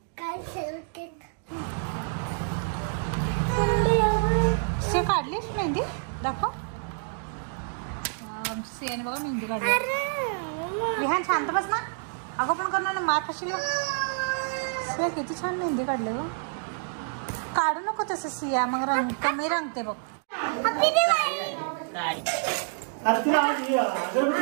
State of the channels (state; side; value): silent; left; digital silence